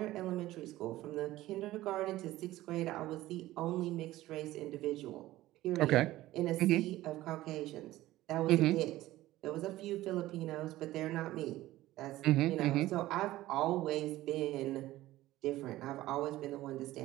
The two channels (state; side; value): quieter; left; 16.2 dB